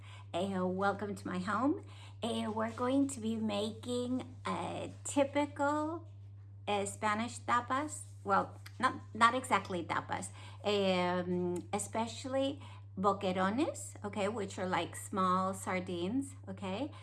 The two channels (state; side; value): identical; both; correlation 1.00